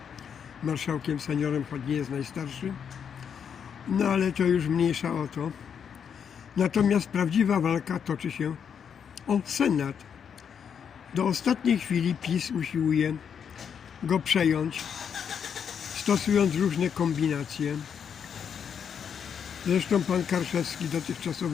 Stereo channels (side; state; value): right; quieter; 7.5 dB